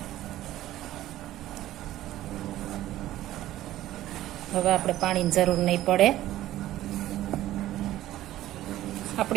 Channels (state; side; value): quieter; left; 14.4 dB